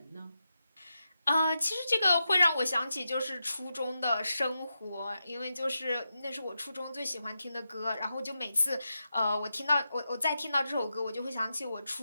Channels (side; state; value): both; inverted; correlation -0.88